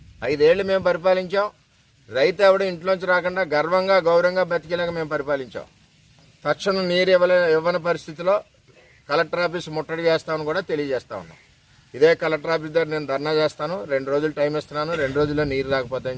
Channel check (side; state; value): both; identical; correlation 1.00